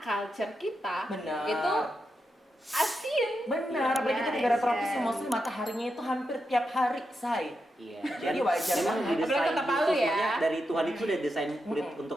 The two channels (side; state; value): both; normal; correlation 0.86